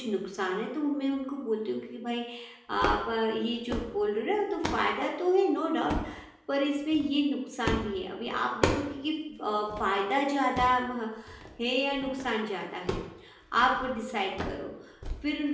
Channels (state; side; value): identical; both; correlation 1.00